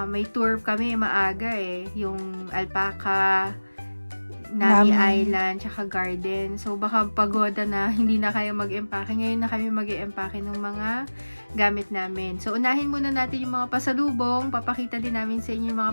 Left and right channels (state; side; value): inverted; both; correlation -1.00